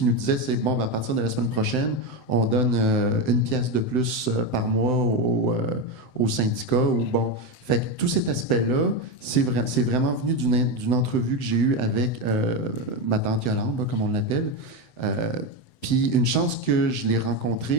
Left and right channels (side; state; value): right; late; 7.8 ms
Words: nous disaient, c'est bon, à partir de la semaine prochaine, on donne 1 pièce de plus par mois au syndicat. Ou bon. Fait que tout cet aspect-là, c'est vraiment venu d'une entrevue que j'ai eue avec ma tante Yolande, là, comme on l'appelle. Puis une chance que je l'ai